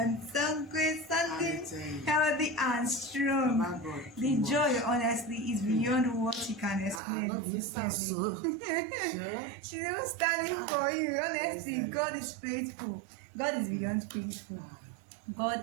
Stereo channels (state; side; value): drops out; left; at 7.0 s